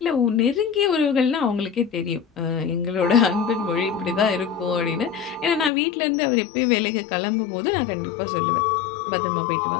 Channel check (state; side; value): drops out; right; at 5.7 s